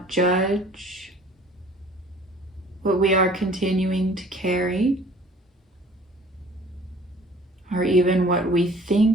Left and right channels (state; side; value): normal; both; correlation 0.51